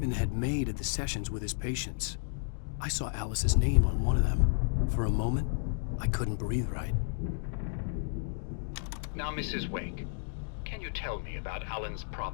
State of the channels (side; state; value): right; silent; digital silence